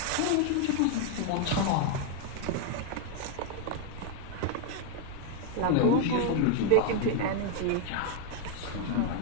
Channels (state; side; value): different; both; correlation 0.00